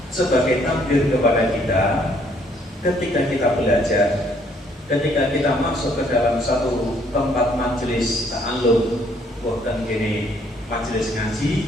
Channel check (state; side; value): normal; both; correlation 0.66